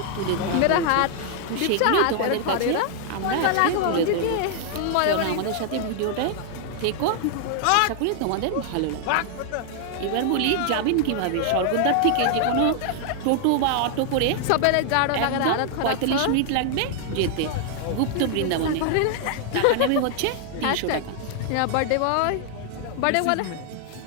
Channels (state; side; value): different; both; correlation 0.00